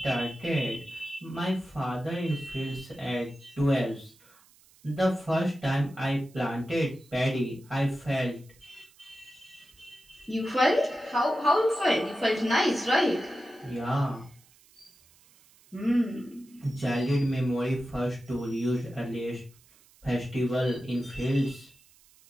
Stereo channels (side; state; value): right; noise; hiss, 28 dB below the sound